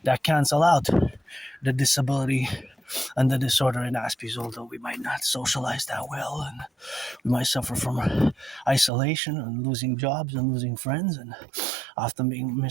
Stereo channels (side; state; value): left; drops out; at 8.9 s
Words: that cancel out the disability and the disorder in Aspies, although we might not socialize that well, and we might suffer from isolation and losing jobs and losing friends and often being